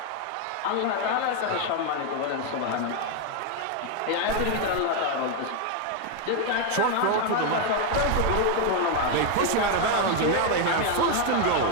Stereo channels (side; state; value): both; different; correlation 0.01